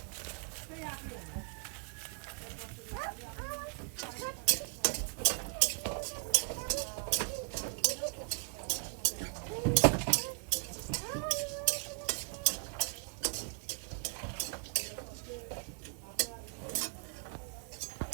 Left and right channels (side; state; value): left; quieter; 39.5 dB